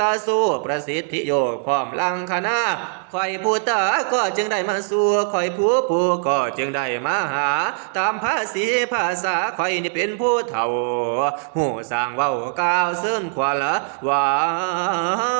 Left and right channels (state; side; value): silent; left; digital silence